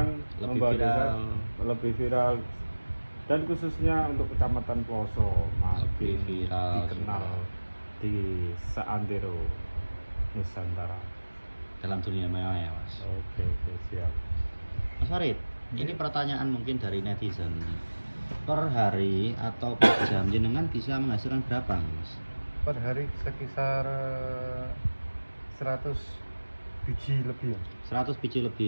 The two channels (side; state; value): both; inverted; correlation -1.00